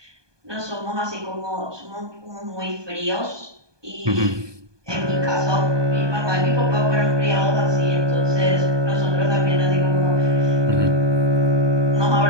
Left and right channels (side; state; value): left; late; 1.2 ms